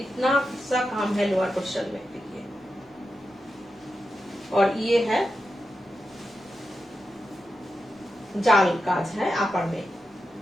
सा काम है लोअर पोर्शन में, देखिए। और ये है जाल काज है अपर में,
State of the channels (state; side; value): normal; both; correlation 0.89